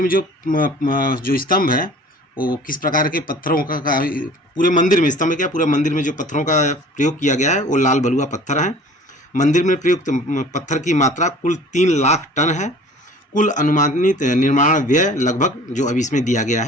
में जो स्तंभ है वो किस प्रकार के पत्थरों का पूरे मंदिर में स्तंभ क्या पूरे मंदिर में जो पत्थरों का प्रयोग किया गया है वो लाल बलुआ पत्थर हैं। मंदिर में प्रयुक्त पत्थर की मात्रा कुल 3 लाख टन है। कुल अनुमानित निर्माण व्यय लगभग जो अभी इसमें दिया गया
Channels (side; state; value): both; normal; correlation 0.47